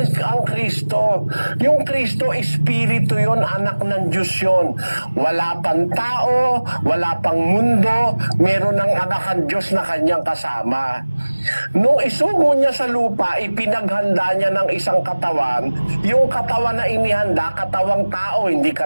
ang Kristo. Yung Kristo, Espiritu yun, anak ng Diyos yun. Wala pang tao, wala pang mundo, meron ng anak ang Diyos na kanyang kasama. Nung isugo niya sa lupa, ipinaghanda niya ng isang katawan. Yung katawan na inihanda, katawang tao, hindi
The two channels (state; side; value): inverted; both; correlation -1.00